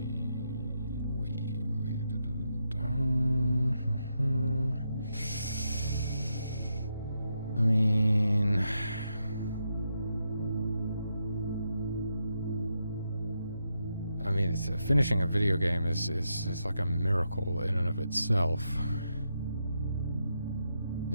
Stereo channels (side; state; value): both; inverted; correlation -0.83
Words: I mean, finishing a video game is like a miracle in and of itself.